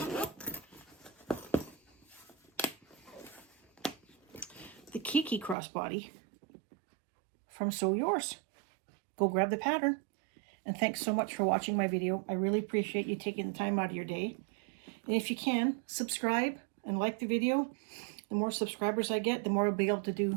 The Kiki Crossbody from Sew Yours. Go grab the pattern. And thanks so much for watching my video. I really appreciate you taking the time out of your day. And if you can, subscribe and like the video. The more subscribers I get, the more I'll be able to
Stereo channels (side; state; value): left; drops out; at 5.6 s